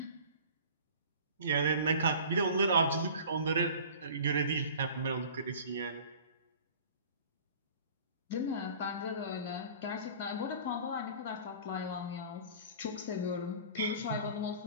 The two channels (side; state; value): both; inverted; correlation -0.43